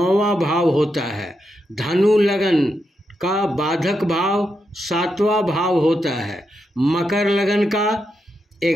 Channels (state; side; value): normal; both; correlation 0.84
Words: भाव होता है। धनु लगन का बाधक भाव 7वां भाव होता है। मकर लगन का